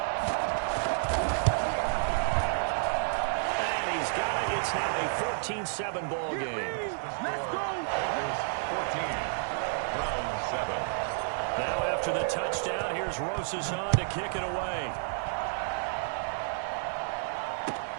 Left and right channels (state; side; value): silent; left; digital silence